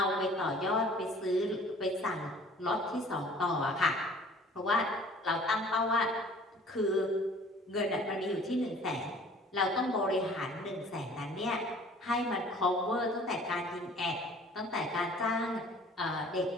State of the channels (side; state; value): both; normal; correlation 0.50